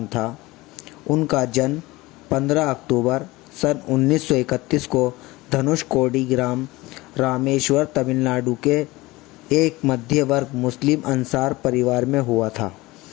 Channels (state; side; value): quieter; right; 20.6 dB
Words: था। उनका जन्म 15 अक्टूबर सन 1931 को धनुषकोडी ग्राम रामेश्वर, तमिलनाडु के एक मध्य वर्ग मुस्लिम अंसार परिवार में हुआ था।